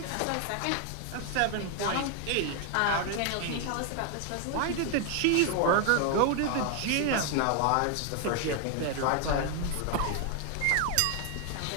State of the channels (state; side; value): different; both; correlation 0.01